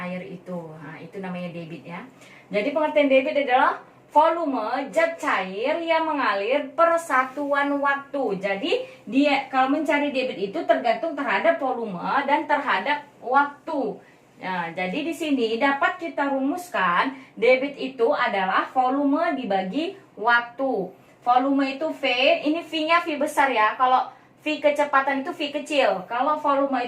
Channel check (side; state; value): both; identical; correlation 1.00